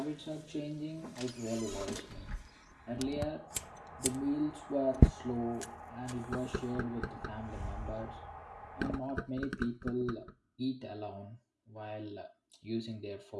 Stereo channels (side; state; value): both; identical; correlation 1.00